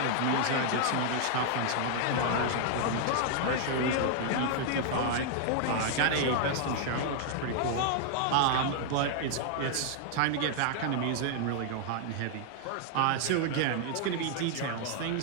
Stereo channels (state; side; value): different; both; correlation 0.00